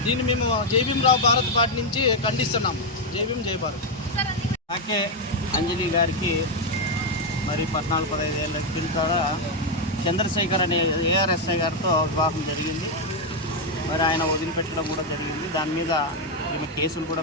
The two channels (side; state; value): both; normal; correlation 0.02